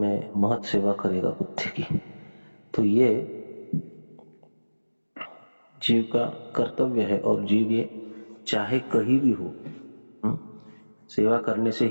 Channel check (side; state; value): both; inverted; correlation -1.00